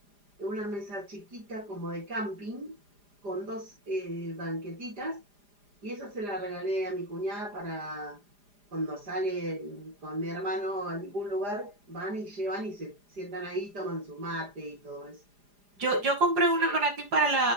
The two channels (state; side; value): late; left; 4.9 ms